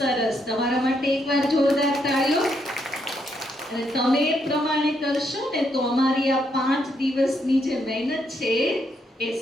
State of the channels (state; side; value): normal; both; correlation 0.76